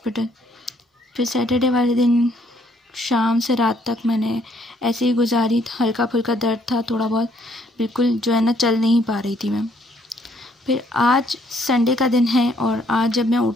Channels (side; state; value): both; normal; correlation 0.67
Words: फिर सैटरडे वाले दिन शाम से रात तक मैंने ऐसे ही गुजारी, हल्का फुल्का दर्द था थोड़ा बहुत, बिल्कुल जो है ना चल नहीं पा रही थी मैं। फिर आज संडे का दिन है और आज जब मैं